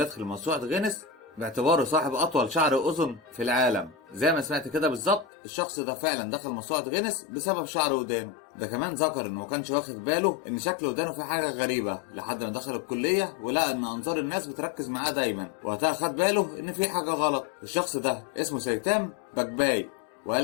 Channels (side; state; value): right; drops out; at 5.2 s